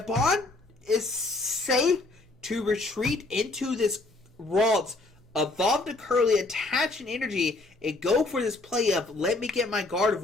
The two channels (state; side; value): quieter; right; 3.1 dB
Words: is safe to retreat into this Ralts, evolve the Curlia, attach an energy, and go for this play of, let me get my